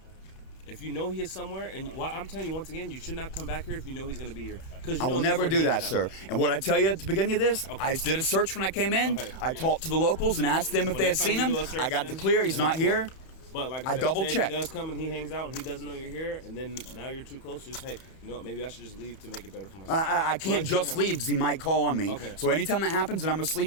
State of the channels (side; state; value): right; late; 31 ms